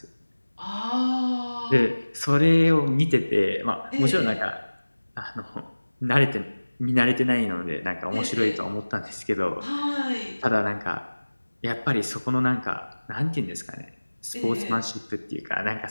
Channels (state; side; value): inverted; both; correlation -1.00